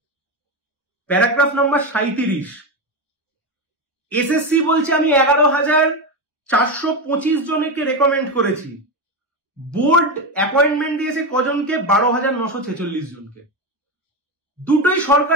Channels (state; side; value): normal; both; correlation 0.15